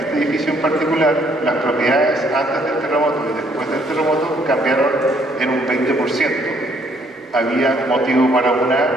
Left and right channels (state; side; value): normal; both; correlation 0.67